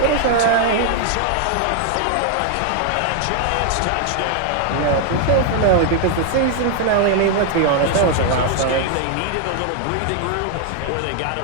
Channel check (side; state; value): both; different; correlation 0.00